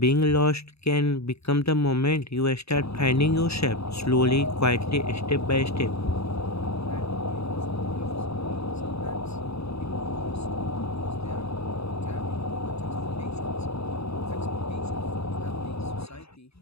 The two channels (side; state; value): right; late; 0.78 ms